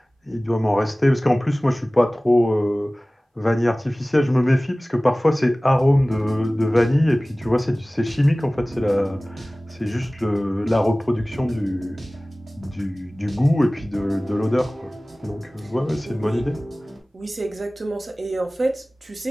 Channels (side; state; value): both; normal; correlation 0.98